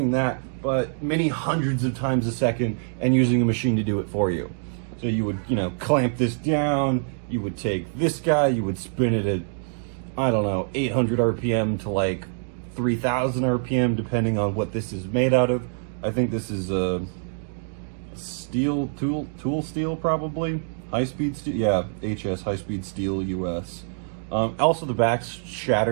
that, but many hundreds of times a second, and using a machine to do it for you. So you would, clamp this down, you would take this guy, you would spin it at, 800 RPM to like 3,000 RPM, depending on what this is made out of. I think this is a steel, tool steel, probably. High-speed steel, yeah, HS, high-speed steel, US. Also, the back's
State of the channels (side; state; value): left; silent; digital silence